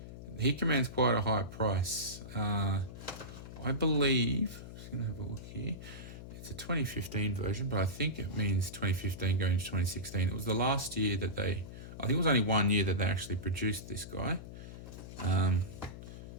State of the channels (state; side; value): noise; left; hum, 12 dB below the sound